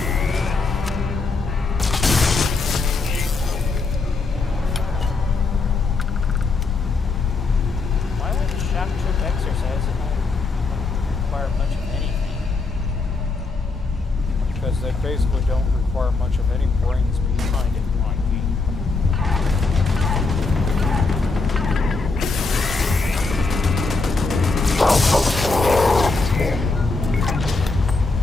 Why would the shock troop exercise not require much of anything? Because they basically don't require much of any brains behind it, Mikey.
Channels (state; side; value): quieter; right; 3.9 dB